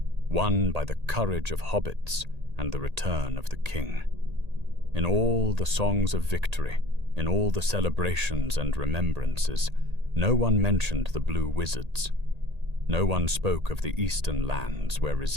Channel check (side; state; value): left; late; 1.8 ms